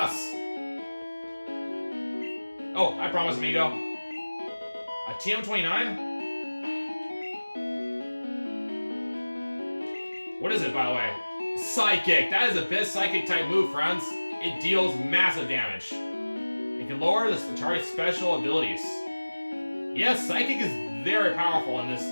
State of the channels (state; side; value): inverted; both; correlation -1.00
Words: Oh, I promise, amigo. A TM29? What is it, by the way? Psychic. That is a best Psychic type move, friends. It deals massive damage. It can lower the Atari's special abilities. Yes, Psychic is very powerful in this